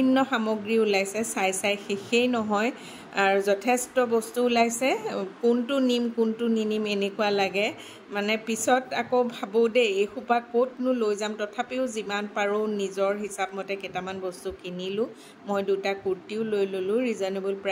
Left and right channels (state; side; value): identical; both; correlation 1.00